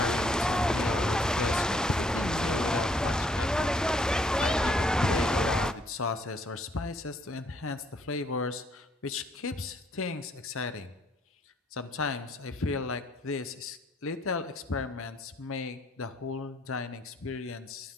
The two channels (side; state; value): both; normal; correlation 0.67